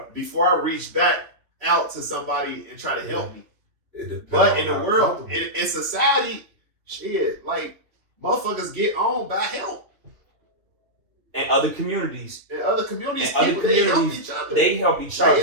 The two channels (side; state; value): left; late; 2.8 ms